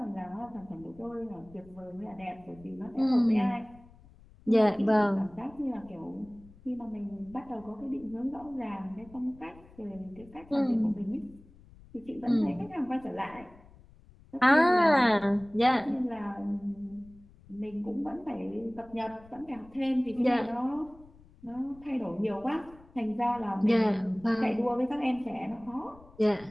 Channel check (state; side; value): noise; left; rumble, 24 dB below the sound